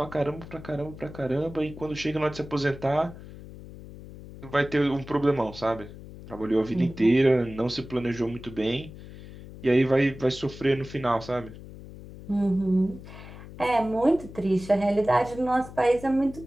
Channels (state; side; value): noise; left; hum, 15 dB below the sound